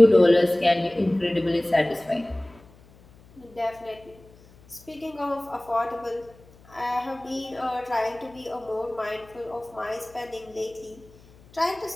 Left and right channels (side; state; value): left; noise; hum, 25 dB below the sound